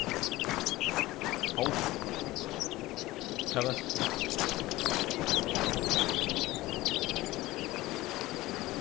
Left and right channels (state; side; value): quieter; right; 18.3 dB